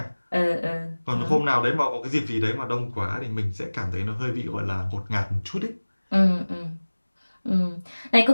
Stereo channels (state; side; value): inverted; both; correlation -1.00